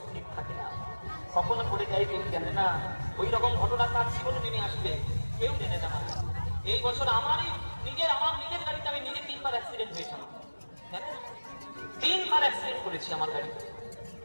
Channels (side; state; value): both; inverted; correlation -1.00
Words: স্থির থাকে না, কখনো পড়ে যায় কেউ জানে না। ওই রকম ঘটনা তার জীবনে নেমে আসবে, কেউ জানে না। এই বছর আমার নিজের গাড়িতে আমি নিজে 3বার অ্যাক্সিডেন্ট হয়েছিলাম, 3বার অ্যাক্সিডেন্ট করেছি আমার গাড়িতে,